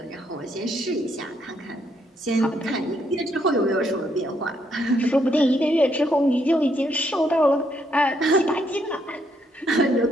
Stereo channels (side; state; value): both; normal; correlation 0.74